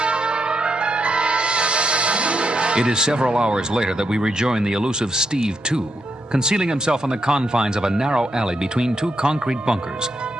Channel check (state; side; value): normal; both; correlation 0.82